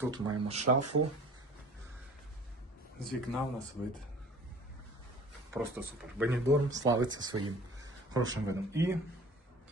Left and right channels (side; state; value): both; normal; correlation 0.46